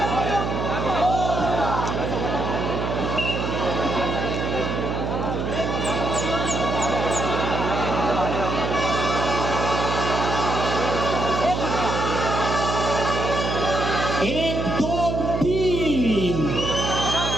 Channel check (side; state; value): right; noise; hum, 2 dB below the sound